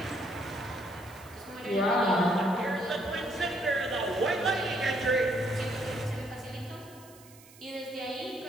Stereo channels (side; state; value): right; noise; hiss, 22 dB below the sound